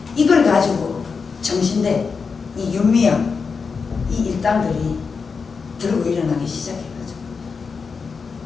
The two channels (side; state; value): right; quieter; 5.2 dB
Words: 이걸 가지고 정신대 이 윤미향 이 일당들이 들고 일어나기 시작해가지고